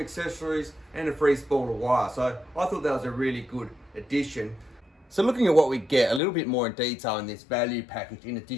and a free spool of wire. So I thought that was a really good addition. So looking at what we get a little bit more in detail in this value package, in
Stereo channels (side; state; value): right; drops out; at 6.2 s